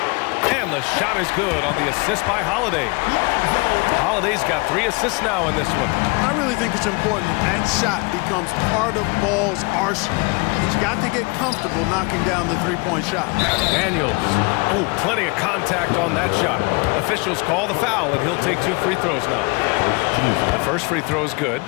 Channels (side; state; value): right; quieter; 29.2 dB